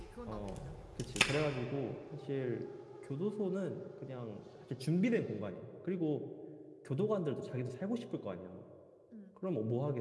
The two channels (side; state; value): both; identical; correlation 1.00